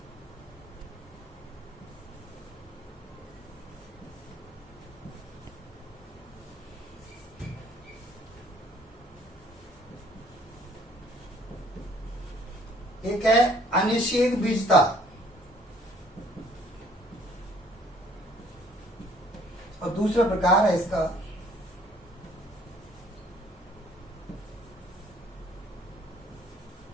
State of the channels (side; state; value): both; normal; correlation 0.59